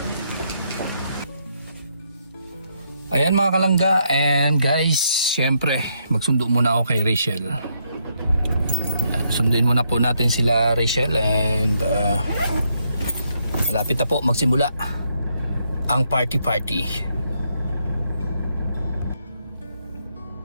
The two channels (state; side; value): inverted; both; correlation -0.76